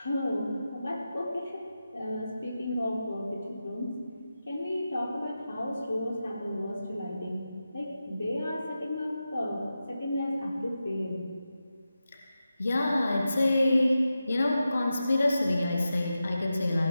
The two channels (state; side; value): inverted; both; correlation -0.91